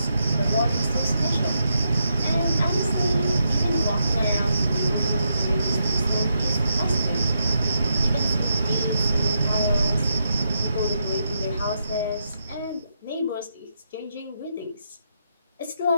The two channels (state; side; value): inverted; both; correlation -0.81